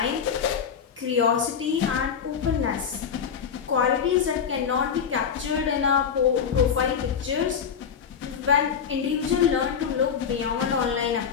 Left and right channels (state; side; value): quieter; right; 7.2 dB